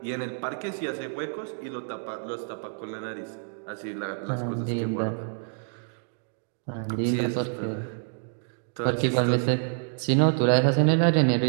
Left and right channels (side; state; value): left; silent; 60 dB below the other